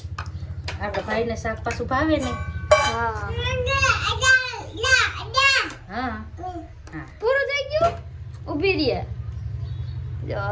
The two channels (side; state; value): both; identical; correlation 1.00